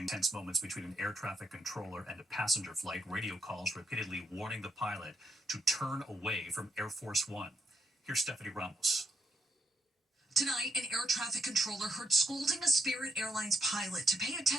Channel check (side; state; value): both; normal; correlation 0.76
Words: Tense moments between an air traffic controller and a passenger flight. Radio calls repeatedly warning the pilot to turn away from Air Force One. Here's Stephanie Ramos. Tonight, an air traffic controller heard scolding a Spirit Airlines pilot to pay